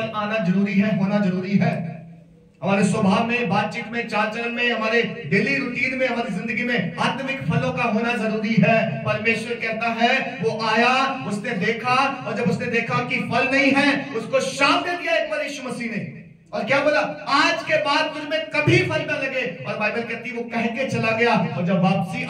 आना जरूरी है, होना जरूरी है। हमारे स्वभाव में, बातचीत में, चाल चलन में, हमारे डेली रूटीन में, हमारी जिंदगी में आत्मिक फलों का होना जरूरी है। परमेश्वर कहता है, वो आया, उसने देखा, और जब उसने देखा कि फल नहीं है, उसको शाप दे दिया एक बार यीशु मसीह ने, और क्या बोला? आज के बाद तुझ में कभी फल न लगे। और बाइबल कहती है वो कह के चला गया, और जब वापसी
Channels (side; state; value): both; identical; correlation 1.00